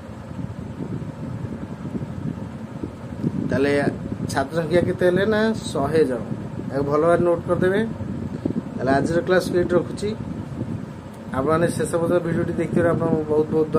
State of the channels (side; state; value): both; identical; correlation 1.00